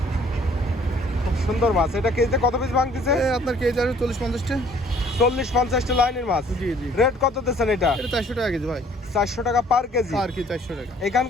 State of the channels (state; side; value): normal; both; correlation 0.58